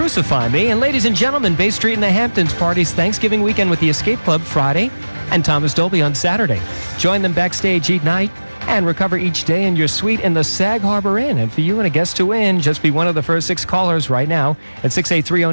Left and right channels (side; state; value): both; inverted; correlation -1.00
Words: Me. And ladies and gentlemen, Bay Street in the Hamptons parties Thanksgiving weekend with the Escape Club Friday and Thomas Dolby on Saturday. Join them backstage each night and recover each day in your suite in the Sag Harbor Inn. And for you and a guest to win, just be one of the first 6 callers right now at